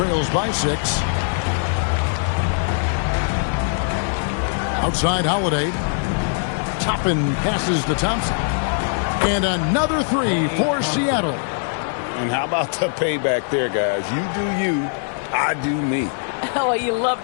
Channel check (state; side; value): silent; right; digital silence